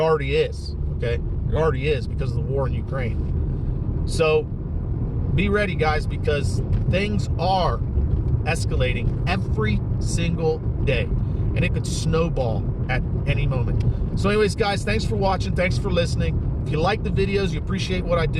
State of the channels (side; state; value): both; identical; correlation 1.00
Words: is, okay? It already is because of the war in Ukraine. So be ready, guys, because things are escalating every single day. And it could snowball at any moment. So anyways, guys, thanks for watching. Thanks for listening. If you like the videos, you appreciate what I